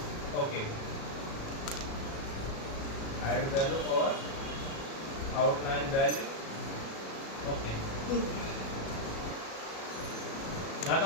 okay, height value और आउटलाइन वैल्यू ओके। ना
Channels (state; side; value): late; right; 36 ms